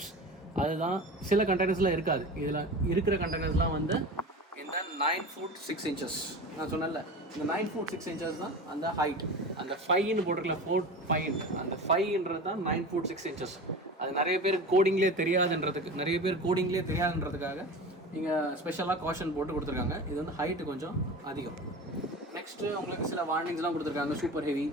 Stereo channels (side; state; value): both; normal; correlation 0.32